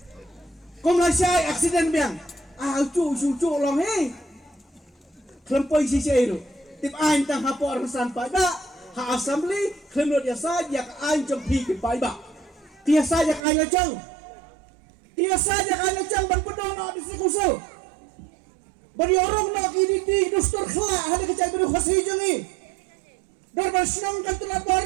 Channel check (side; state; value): left; drops out; at 13.5 s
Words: komlasai aksiden biang cu long klempoi si itu tip ain tang hapor san pada ha assembly klemot ya saja ain jempi ke baiba dia saja ain lejang ban pedong no di sekusul bari orang no kini di dustur khla ada kecai beru khasi jangi darban senang kan telah